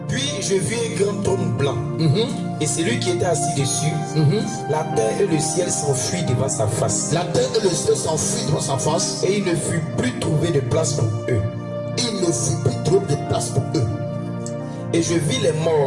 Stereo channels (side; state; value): both; identical; correlation 1.00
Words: Puis je vis un grand trône blanc. Et celui qui était assis dessus, la terre et le ciel s'enfuient devant sa face. La terre et le ciel s'enfuient devant sa face. Et il ne fut plus trouvé de place pour eux. Il ne fut plus trouvé de place pour eux. Et je vis les